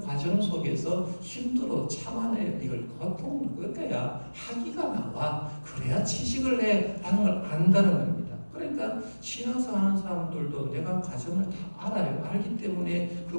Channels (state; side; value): inverted; both; correlation -1.00